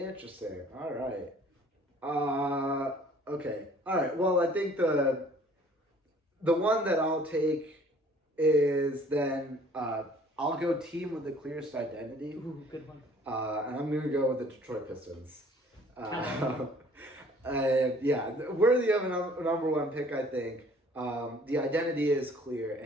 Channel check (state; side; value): normal; both; correlation 0.55